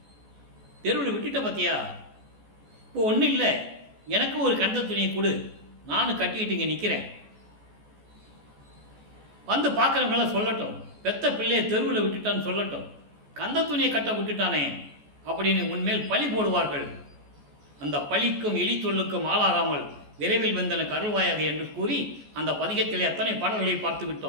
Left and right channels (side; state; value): left; late; 14 ms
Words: தெருவில் விட்டுட்ட பார்த்தியா, இப்போ ஒன்றும் இல்லை, எனக்கு ஒரு கந்த துணியை கொடு, நானும் கட்டிக்கிட்டு இங்கே நிற்கிறேன், வந்து பார்க்குறவங்களாம் சொல்லட்டும், பெத்த பிள்ளையை தெருவில் விட்டுட்டான்னு சொல்லட்டும், கந்த துணியை கட்ட விட்டுட்டானே அப்படின்னு உன்மேல் பழி போடுவார்கள். அந்த பழிக்கும் எலி சொல்லுக்கும் ஆளாகாமல் விரைவில் வந்தனுக்கு அருள்வாயாக என்று கூறி அந்த பதிகத்திலே அத்தனை பாடல்களை பார்த்து